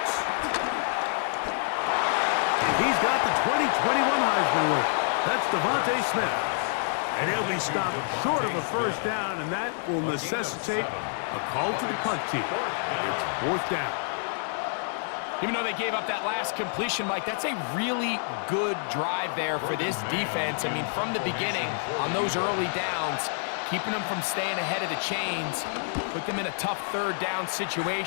He's got the 2021 Heisman winner. That's Devontae Smith. And he'll be stopped short of a 1st down, and that will necessitate a call to the punt team. It's 4th down. Even though they gave up that last completion, Mike, that's a really good drive there for this defense. I mean, from the beginning, on those early downs, keeping them from staying ahead of the chains, put them in a tough 3rd down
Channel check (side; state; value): right; silent; 60 dB below the other